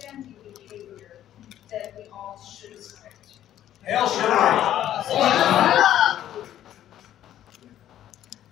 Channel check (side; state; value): right; quieter; 11.8 dB